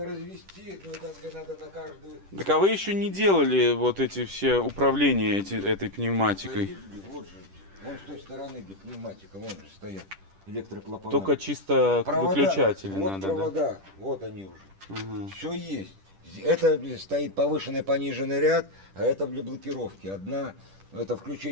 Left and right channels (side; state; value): left; late; 10 ms